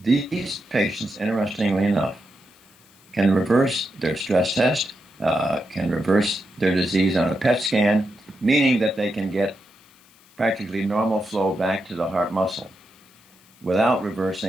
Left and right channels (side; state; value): left; noise; hiss, 29 dB below the sound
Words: patients, interestingly enough, can reverse their stress test, can reverse their disease on a PET scan, meaning that they can get practically normal flow back to the heart muscle without